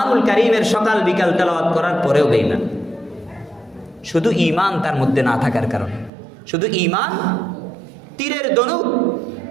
কারীমের সকাল বিকাল তেলাওয়াত করার পরেও বেঈমান। শুধু ঈমান তার মধ্যে না থাকার কারণে। শুধু ঈমান, তীরের ধনুক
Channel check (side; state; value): left; drops out; at 6.1 s